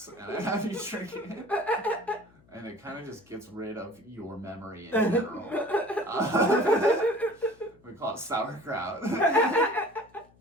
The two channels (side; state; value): left; noise; hum, 30 dB below the sound